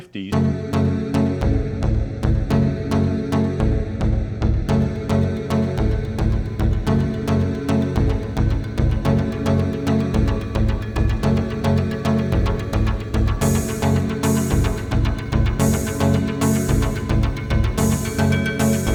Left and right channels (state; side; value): identical; both; correlation 1.00